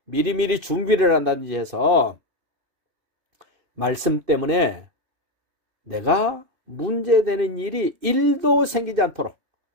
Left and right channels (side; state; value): left; late; 2.6 ms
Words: 미리미리 준비를 한다든지 해서 말씀 때문에 내가 문제되는 일이 1도 생기지 않도록